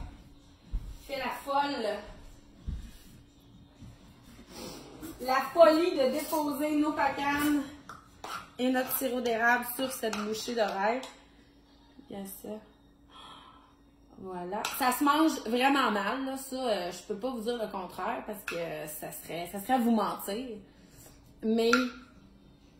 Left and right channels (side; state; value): both; identical; correlation 1.00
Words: fait la folie de déposer nos pacanes et notre sirop d'érable sur cette bouchée de rêve. Il y a ça. Voilà. Ça se mange vraiment mal, là. Ça, je peux pas vous dire le contraire parce que ça serait vous mentir. Mais,